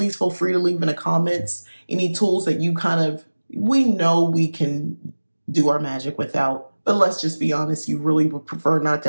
feel free to leave in the comments any tools that you we know we can do our magic without. But let's just be honest, you really would prefer not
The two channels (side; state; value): both; inverted; correlation -1.00